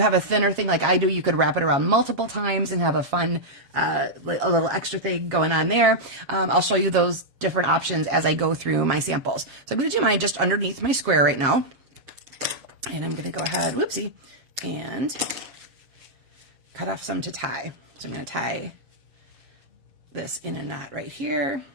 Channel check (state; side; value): late; left; 7.4 ms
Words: have a thinner thing like I do, you could wrap it around multiple times and have a fun, a little extra thing going on there. I'll show you those different options as I go through my samples. So I'm going to do mine just underneath my square right now. And I'm going to go ahead, whoopsie, and cut off some to tie. So I'm going to tie this in a knot right here,